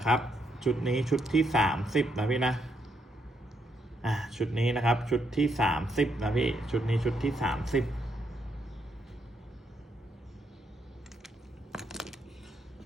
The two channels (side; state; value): both; normal; correlation 0.77